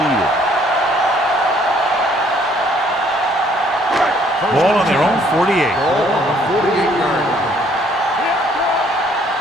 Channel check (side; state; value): both; normal; correlation 0.63